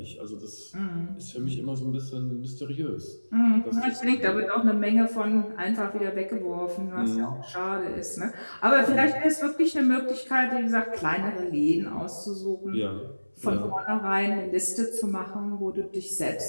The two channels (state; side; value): inverted; both; correlation -1.00